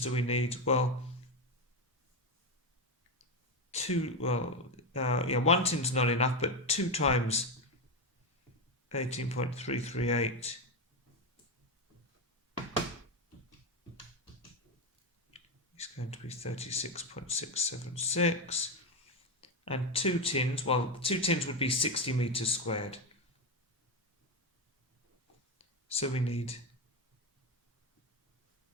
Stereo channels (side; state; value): both; normal; correlation 0.12